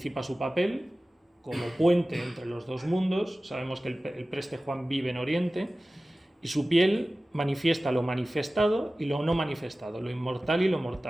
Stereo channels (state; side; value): normal; both; correlation 0.96